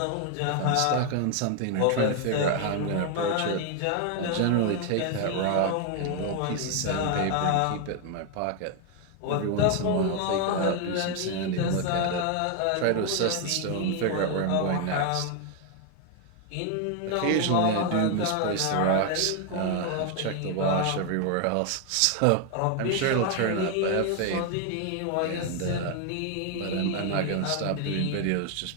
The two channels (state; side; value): different; both; correlation 0.01